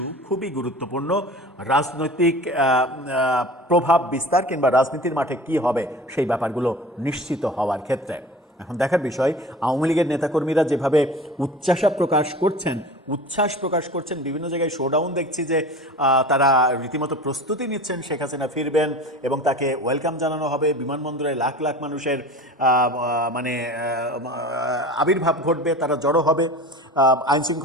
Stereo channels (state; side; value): normal; both; correlation 0.37